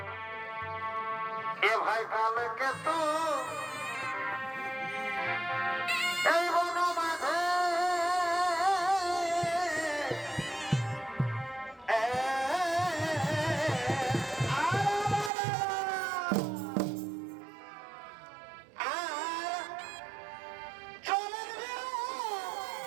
এ ভাই কালকে তো এই বন মাঝে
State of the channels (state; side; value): drops out; left; at 15.3 s